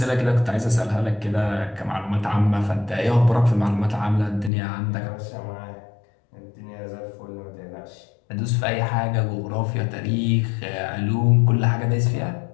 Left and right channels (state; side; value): drops out; right; at 4.5 s